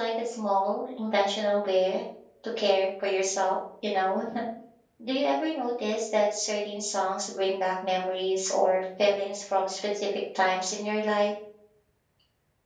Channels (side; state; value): both; identical; correlation 1.00